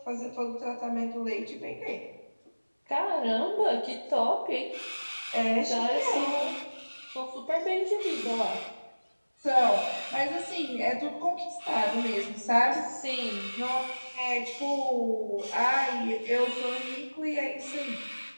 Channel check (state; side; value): inverted; both; correlation -1.00